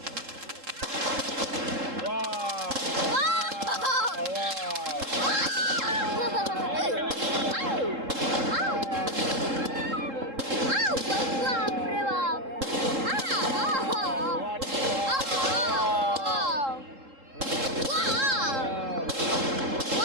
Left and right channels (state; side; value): late; left; 3.7 ms